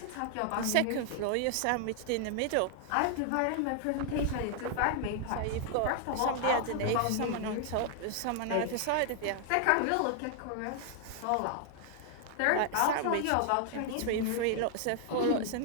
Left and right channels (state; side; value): different; both; correlation 0.00